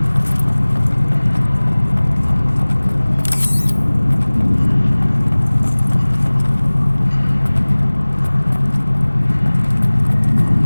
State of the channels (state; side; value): inverted; both; correlation -1.00